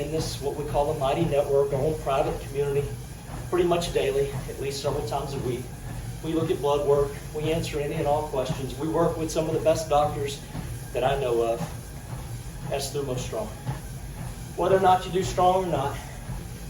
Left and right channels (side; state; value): both; identical; correlation 1.00